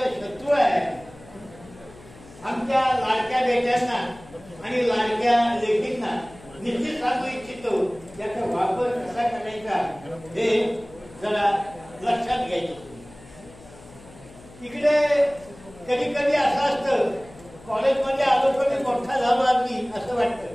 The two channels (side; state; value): left; noise; hum, 21 dB below the sound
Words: शत्रू आहे. आमच्या लाडक्या बेट्यांना आणि लाडक्या लेकींना निश्चित सांगू इच्छितो याचा वापर कसा करायचा हे जरा लक्षात घ्यायचं. इकडे कधी कधी असं असतं कॉलेजमध्ये आलो पण मोठा झालो आम्ही असं